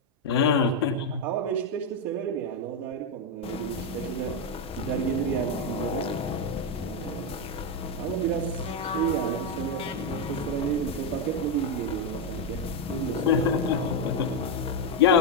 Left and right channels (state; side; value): normal; both; correlation 0.04